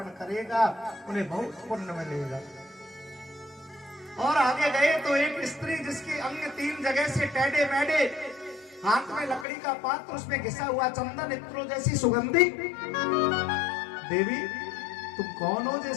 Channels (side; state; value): right; drops out; at 9.5 s